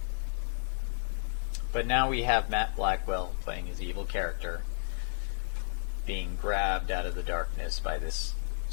But now we have Matt Blackwell playing his evil character, being grabbed out of the darkness by this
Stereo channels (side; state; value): right; silent; digital silence